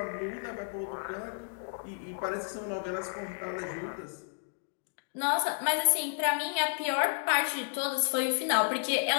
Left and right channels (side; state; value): right; silent; digital silence